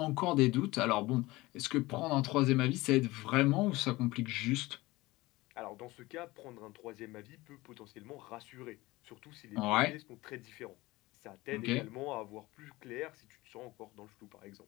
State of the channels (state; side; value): quieter; right; 20.1 dB